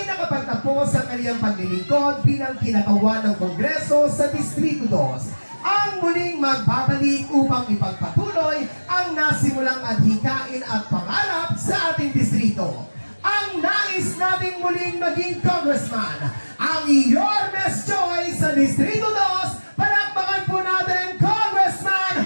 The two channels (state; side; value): inverted; both; correlation -1.00